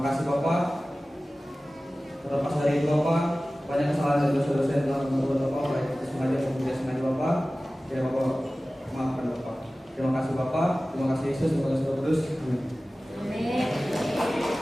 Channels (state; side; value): normal; both; correlation 0.97